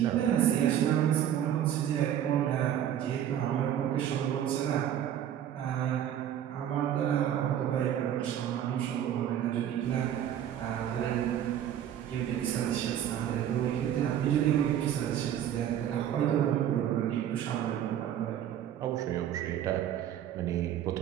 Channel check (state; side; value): quieter; left; 10.5 dB